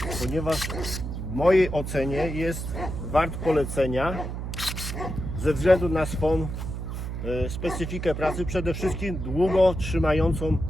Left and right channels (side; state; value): right; noise; hum, 5 dB below the sound